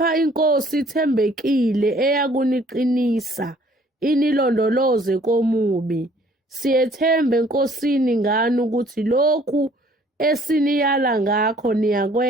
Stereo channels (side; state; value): both; normal; correlation 0.58